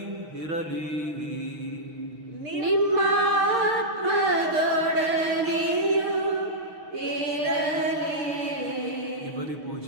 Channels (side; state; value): left; late; 6.6 ms